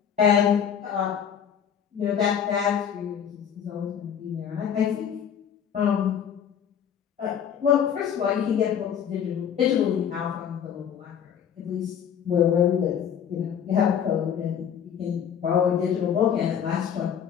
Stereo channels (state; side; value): quieter; right; 8.4 dB